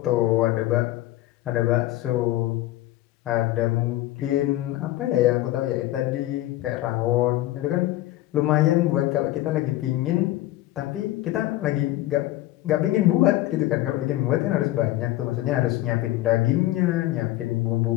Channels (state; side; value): quieter; right; 16.1 dB